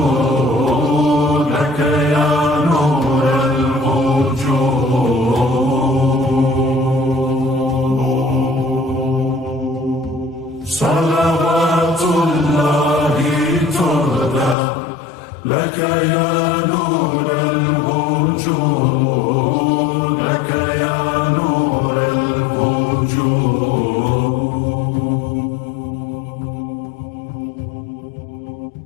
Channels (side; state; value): right; drops out; at 14.6 s